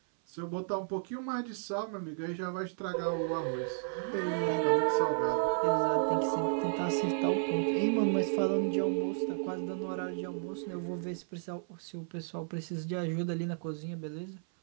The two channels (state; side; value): silent; left; 56 dB below the other